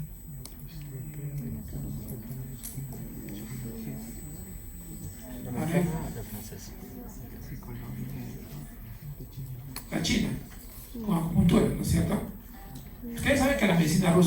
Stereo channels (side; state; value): both; identical; correlation 1.00